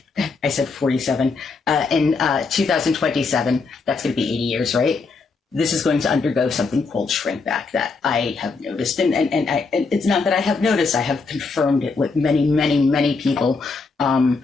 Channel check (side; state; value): right; quieter; 4.3 dB